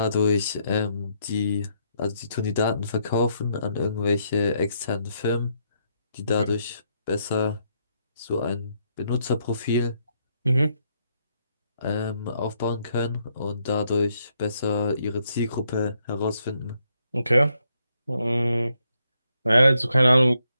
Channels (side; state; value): both; inverted; correlation -0.76